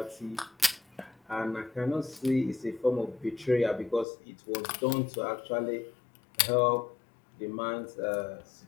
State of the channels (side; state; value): right; drops out; at 4.0 s